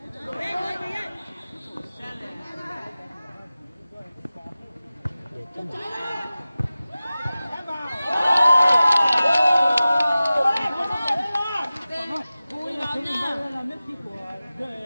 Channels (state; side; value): inverted; both; correlation -0.97